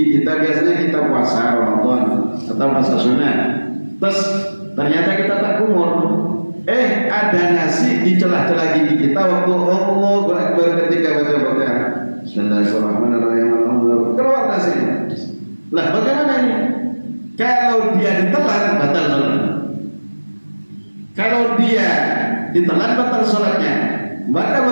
kita biasanya kita puasa Ramadan atau puasa sunnah, ternyata kita tak kumur. Ada nasi di celah-celah gigi kita waktu Allahu Akbar ketika baca bacaan Bismillahirrahmanirrahim, keluar nasinya. Lah bagaimana ini? Kalau dia ditelan batal sholatnya. Kalau dia ditelan batal sholatnya, maka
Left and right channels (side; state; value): both; inverted; correlation -1.00